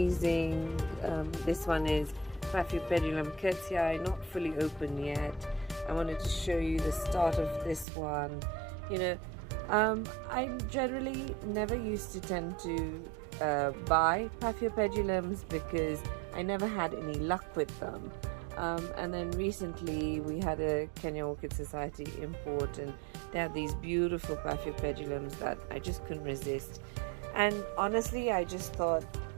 This one is Paphiopedilum curtii, not fully open yet. I wanted to show you the start of this one. I generally never used to tend to buy Paphiopedilums because I never had any luck with them. And then recently we had a Kenya Orchid Society import, and they had these beautiful Paphiopedilums that I just couldn't resist. And honestly, I just thought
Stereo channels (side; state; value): left; drops out; at 7.9 s